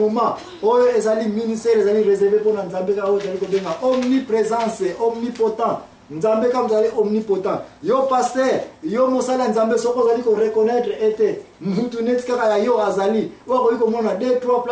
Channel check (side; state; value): both; identical; correlation 1.00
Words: oyo ezali ministère ezali réservé mpona nzambe ka oyo ezali kobenga omniprésence omnipotent nzambe kama zali omnipotent yo pasteur yo mosala nzambe soko zali ko reconnaître ete mutu neti kaka ya yo azali wako iko mona 2-3